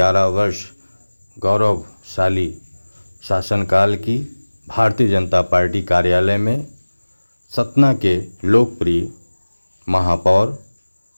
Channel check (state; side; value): inverted; both; correlation -1.00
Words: वर्ष गौरवशाली शासनकाल की भारतीय जनता पार्टी कार्यालय में सतना के लोकप्रिय महापौर